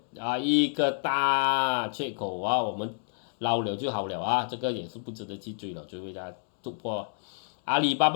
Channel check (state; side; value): silent; right; digital silence